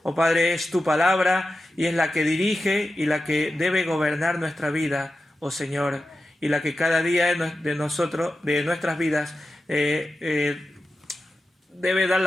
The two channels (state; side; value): normal; both; correlation 0.92